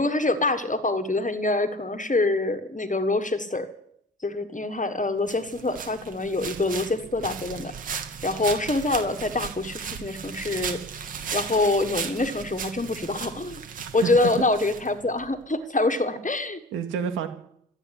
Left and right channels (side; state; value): both; normal; correlation 0.39